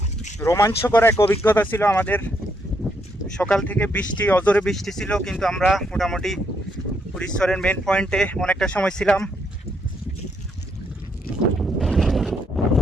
রোমাঞ্চকর এক অভিজ্ঞতা ছিল আমাদের। সকাল থেকে বৃষ্টি, অজোরে বৃষ্টি ছিল, কিন্তু আমরা মোটামুটি উড়িষ্যরের মেন পয়েন্টে অনেকটা সময় ছিলাম।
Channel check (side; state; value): both; normal; correlation 0.76